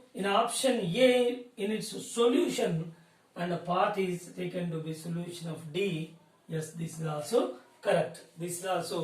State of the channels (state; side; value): identical; both; correlation 1.00